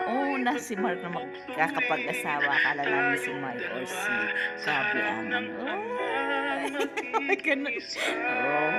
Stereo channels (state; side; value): identical; both; correlation 1.00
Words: si Mark na magkakapag-asawa. Akala namin si May or si Gabi ang